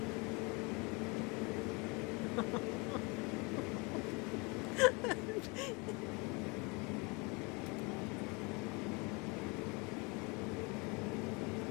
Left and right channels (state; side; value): quieter; right; 28.8 dB